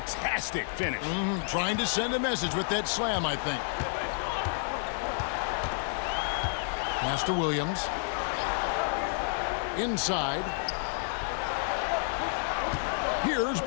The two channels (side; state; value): right; silent; digital silence